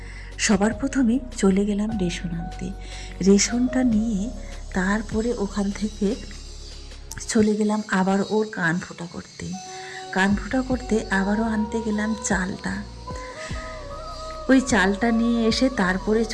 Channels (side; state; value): both; identical; correlation 1.00